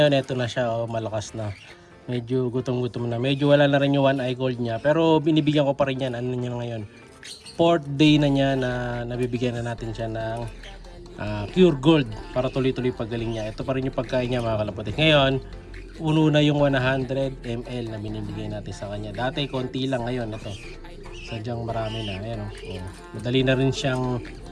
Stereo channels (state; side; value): identical; both; correlation 1.00